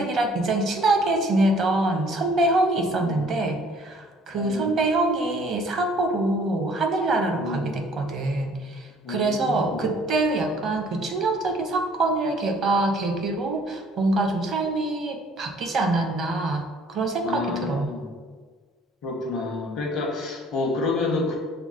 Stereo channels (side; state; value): both; normal; correlation 0.56